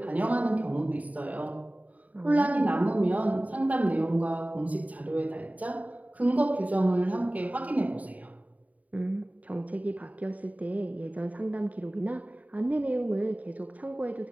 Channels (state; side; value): late; left; 0.072 ms